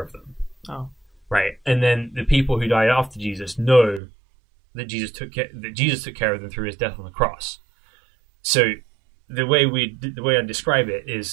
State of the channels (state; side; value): drops out; left; at 4.0 s